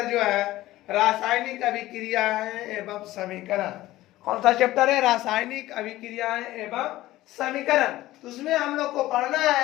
जो है रासायनिक अभिक्रियाएं एवं समीकरण। कौन सा चैप्टर है? रासायनिक अभिक्रियाएं एवं समीकरण। तो उसमें हम लोग को पढ़ना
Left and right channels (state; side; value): quieter; right; 16.2 dB